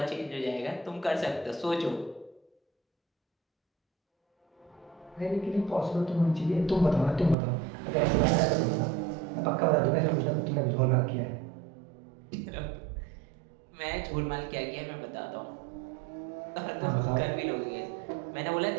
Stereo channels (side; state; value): left; drops out; at 7.4 s